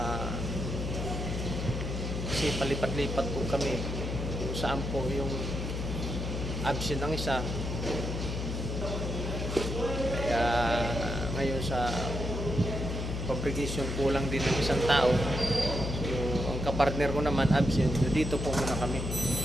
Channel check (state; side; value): noise; left; hum, 3 dB below the sound